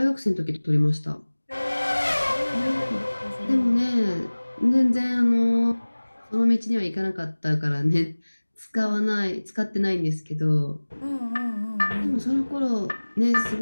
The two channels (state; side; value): inverted; both; correlation -1.00